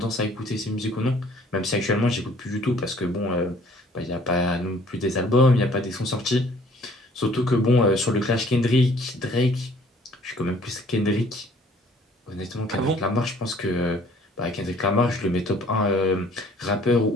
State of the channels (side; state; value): both; normal; correlation 0.57